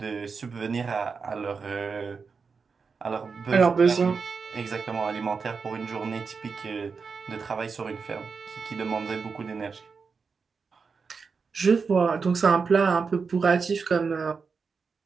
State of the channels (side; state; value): left; quieter; 5.2 dB